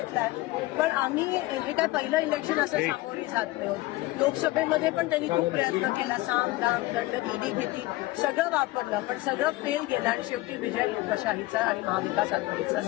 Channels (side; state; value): right; quieter; 19.2 dB